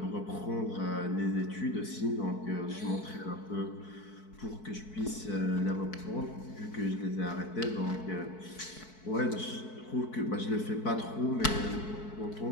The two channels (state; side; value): late; right; 4.6 ms